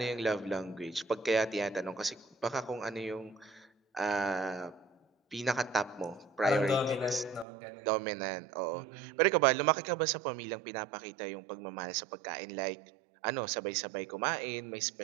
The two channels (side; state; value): left; drops out; at 7.5 s